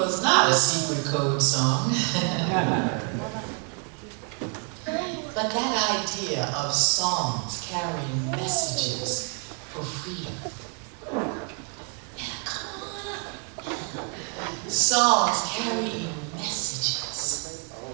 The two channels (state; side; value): quieter; left; 39.2 dB